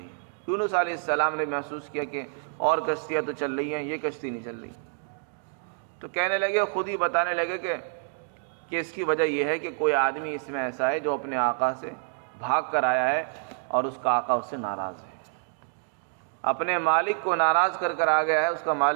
یونس علیہ السلام نے محسوس کیا کہ اور کشتیاں تو چل رہی ہیں، یہ کشتی نہیں چل رہی، تو کہنے لگے، خود ہی بتانے لگے کہ اس کی وجہ یہ ہے کہ کوئی آدمی اس میں ایسا ہے جو اپنے آقا سے بھاگ کر آیا ہے اور اس کا آقا اس سے ناراض ہے، اپنے مالک کو ناراض کر کر آ گیا ہے، اس کا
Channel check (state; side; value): silent; left; digital silence